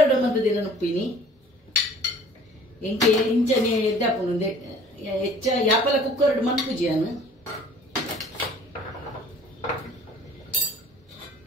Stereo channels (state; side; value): normal; both; correlation 0.50